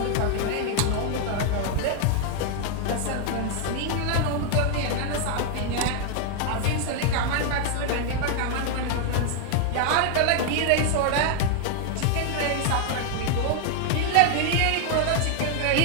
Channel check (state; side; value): different; both; correlation 0.00